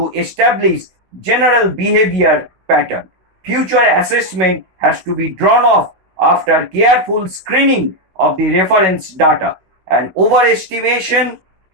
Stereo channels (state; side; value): late; left; 16 ms